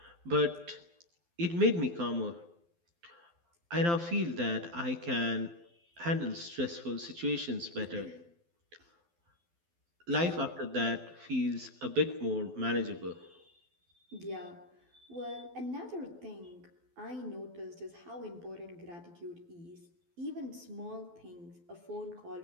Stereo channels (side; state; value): left; late; 12 ms